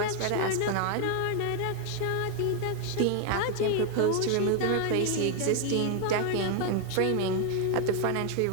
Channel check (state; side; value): different; both; correlation 0.00